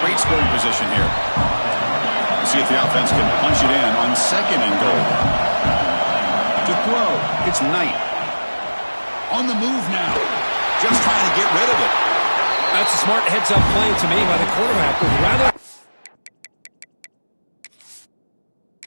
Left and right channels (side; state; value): both; inverted; correlation -1.00